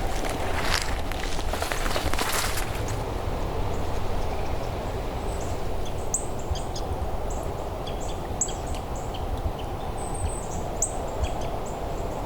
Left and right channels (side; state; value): both; identical; correlation 1.00